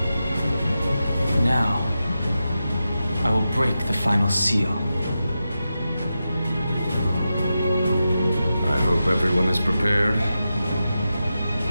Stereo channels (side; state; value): both; inverted; correlation -0.91